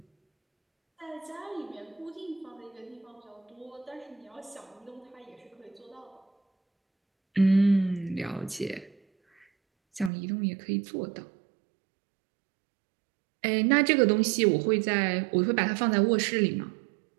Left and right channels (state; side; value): drops out; left; at 10.1 s